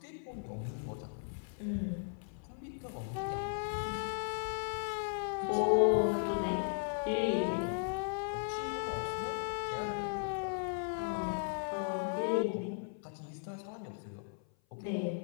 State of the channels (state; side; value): silent; right; 53 dB below the other